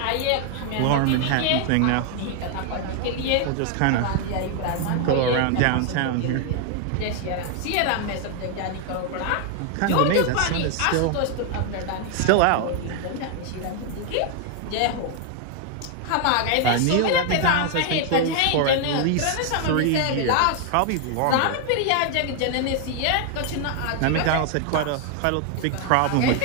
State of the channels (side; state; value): both; different; correlation 0.00